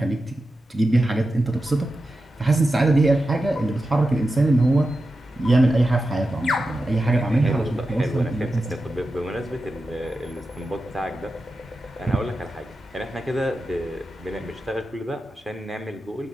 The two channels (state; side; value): normal; both; correlation 0.91